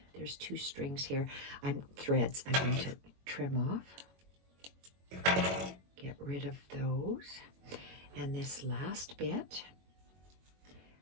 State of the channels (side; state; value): left; late; 21 ms